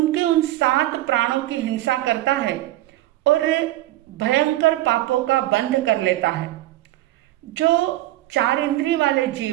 उन 7 प्राणों की हिंसा करता है और भयंकर पापों का बंध कर लेता है। जो 4 इंद्रिय वाले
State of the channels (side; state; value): left; quieter; 16.2 dB